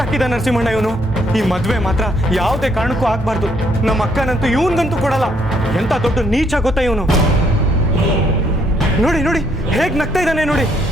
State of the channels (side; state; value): both; normal; correlation 0.70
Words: ನರಸಿಂಹಣ್ಣ ಇವನು. ಈ ಮದುವೆ ಮಾತ್ರ ಯಾವುದೇ ಕಾರಣಕ್ಕೂ ಆಗ್ಬಾರ್ದು. ನಮ್ಮ ಅಕ್ಕನಂತೂ ಇವನ್ಗಂತೂ ಕೊಡಲ್ಲ. ಎಂತ ದೊಡ್ಡ ನೀಚ ಗೊತ್ತಾ ಇವನು. ನೋಡಿ ನೋಡಿ ಹೇಗೆ ನಗ್ತಾ ಇದ್ದಾನೆ ನೋಡಿ.